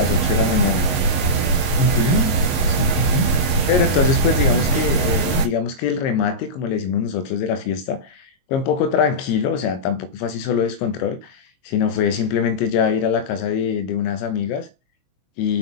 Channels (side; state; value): right; late; 22 ms